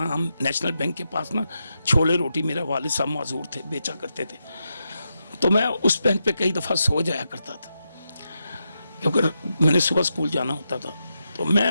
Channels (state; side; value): inverted; both; correlation -0.86